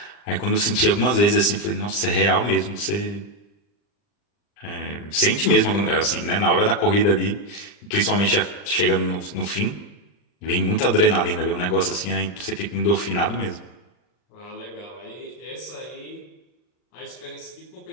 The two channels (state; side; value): late; right; 40 ms